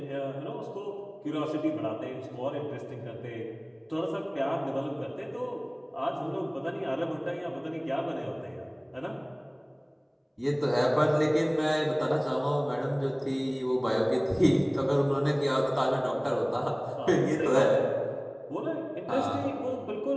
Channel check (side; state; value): both; identical; correlation 1.00